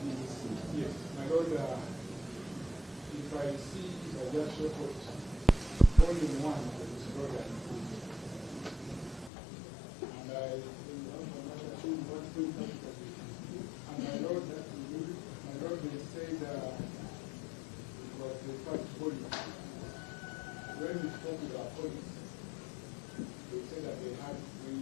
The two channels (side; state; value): right; drops out; at 9.3 s